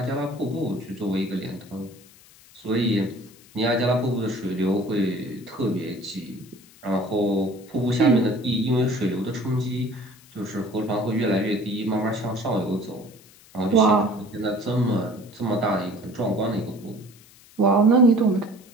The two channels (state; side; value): noise; left; hiss, 25 dB below the sound